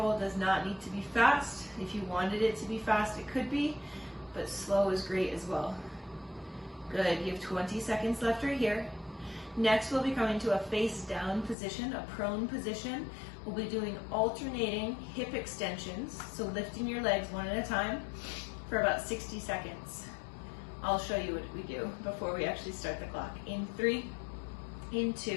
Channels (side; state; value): right; drops out; at 11.6 s